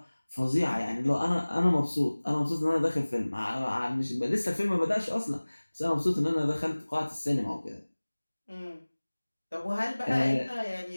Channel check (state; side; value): inverted; both; correlation -1.00